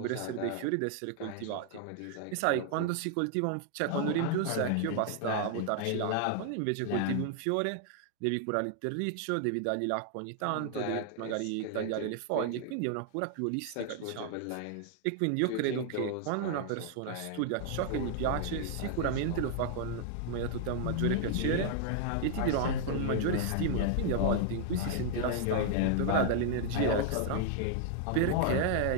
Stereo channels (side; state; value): both; different; correlation 0.00